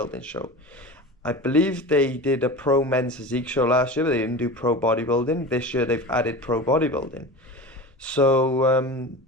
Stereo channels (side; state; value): both; normal; correlation 0.31